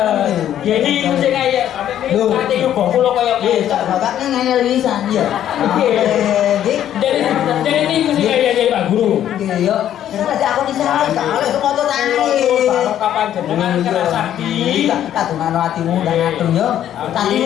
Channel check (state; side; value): quieter; right; 11.0 dB